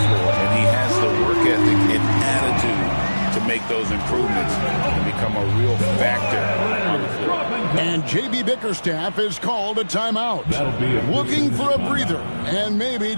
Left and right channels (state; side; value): inverted; both; correlation -1.00